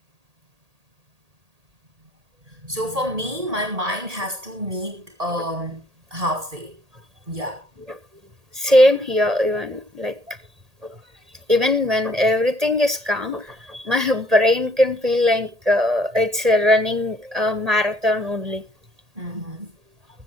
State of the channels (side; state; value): left; late; 1.8 ms